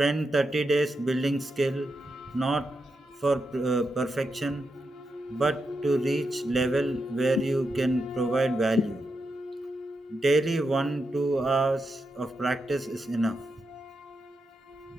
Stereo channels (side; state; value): both; normal; correlation 0.86